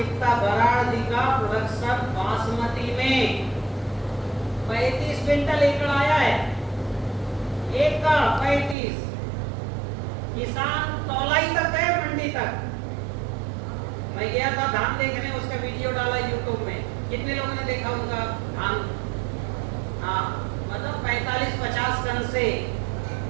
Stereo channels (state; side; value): drops out; left; at 8.8 s